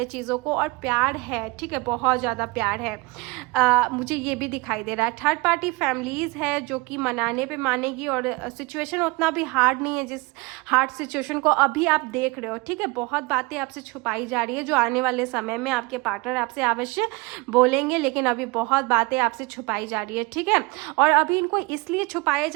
चीज़ों को, और प्यार है, ठीक है, बहुत ज़्यादा प्यार है। मुझे ये भी दिखाई दे रहा है। थर्ड पार्टी फैमिलीज़ है जो कि मनाने पे मानेगी, और सिचुएशन उतना भी हार्ड नहीं है जिस हार्ड सिचुएशन को अभी आप देख रहे हो, ठीक है। बहुत बातें आपसे छुपाई जा रही है जो आने वाले समय में आपके पार्टनर आपसे अवश्य बोलेंगे, लेकिन अभी बहुत बातें आपसे छुपाई जा रही है, ठीक है। और अभी इनको इसलिए छुपाया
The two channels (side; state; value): left; quieter; 25.8 dB